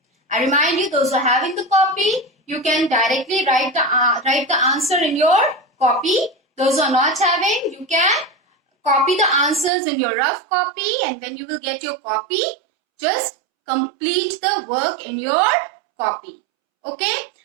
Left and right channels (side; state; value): left; drops out; at 9.7 s